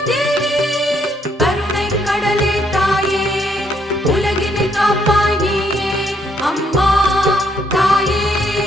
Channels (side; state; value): both; normal; correlation 0.71